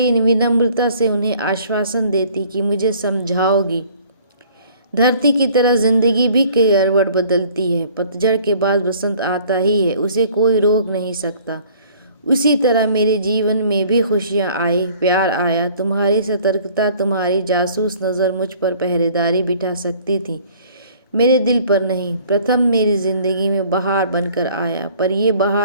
विनम्रता से उन्हें आश्वासन देती कि मुझे समझाओगी। धरती की तरह जिंदगी भी करवट बदलती है, पतझड़ के बाद बसंत आता ही है, उसे कोई रोक नहीं सकता। उसी तरह मेरे जीवन में भी खुशियाँ आई, प्यार आया। तुम्हारी सतर्कता, तुम्हारी जासूस नज़र मुझ पर पहरेदारी बिठा सकती थी, मेरे दिल पर नहीं। प्रथम मेरी जिंदगी में बहार बनकर आया, पर यह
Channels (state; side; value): inverted; both; correlation -0.54